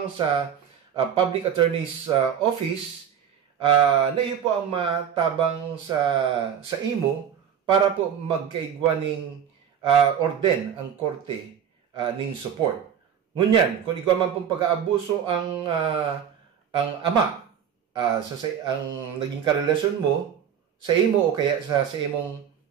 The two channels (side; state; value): left; quieter; 8.4 dB